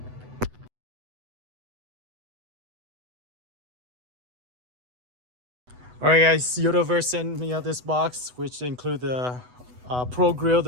All right, guys, Yotaverse sent me out this box, which include the Pro Grille,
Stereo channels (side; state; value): left; late; 8.0 ms